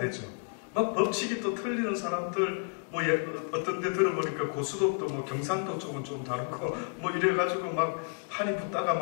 막 법칙이 또 틀리는 사람들, 뭐 어떤 데 들어보니까 고수독도 뭐 경상도 쪽은 좀 다르고 뭐 이래가지고 막 판이 붙다가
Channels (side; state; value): right; quieter; 38.9 dB